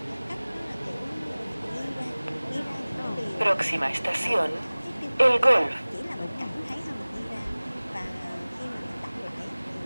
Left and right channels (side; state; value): both; inverted; correlation -1.00